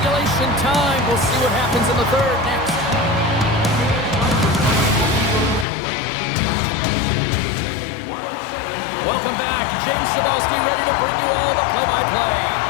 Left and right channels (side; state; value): right; drops out; at 5.7 s